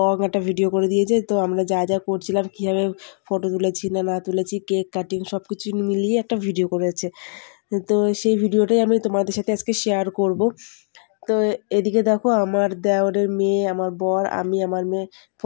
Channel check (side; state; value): right; silent; digital silence